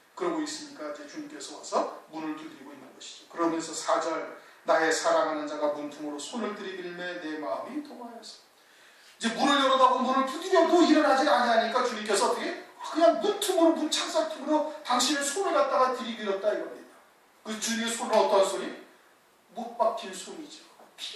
그러고 있으니까 이제 주님께서 와서 문을 두드리고 있는 것이죠. 그러면서 4절 나의 사랑하는 자가 문틈으로 손을 들이밀매 내 마음이 동하였어. 이제 문을 열어다고 문을 두드려도 일어나지 아니하니까 주님께서 어떻게 그냥 문틈으로 문 창살 틈으로 당신의 손을 갖다가 들이밀었다 이겁니다. 그 주님의 손은 어떤 손이? 못 박힌 손이죠. 피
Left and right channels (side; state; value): both; identical; correlation 1.00